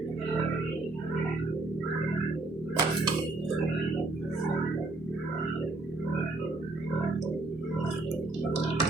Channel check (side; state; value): left; quieter; 3.0 dB